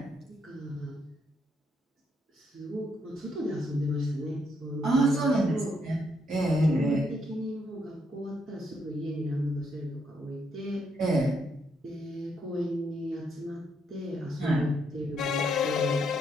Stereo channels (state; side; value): normal; both; correlation 0.75